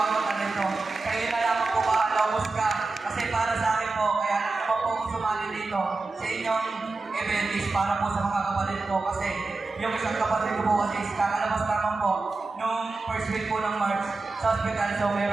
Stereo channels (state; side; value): quieter; left; 3.6 dB